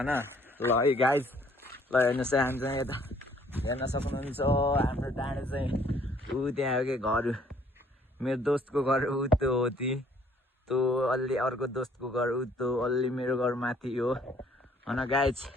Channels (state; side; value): normal; both; correlation 0.62